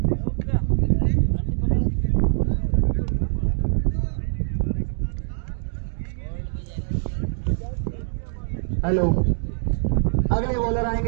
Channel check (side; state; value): left; silent; digital silence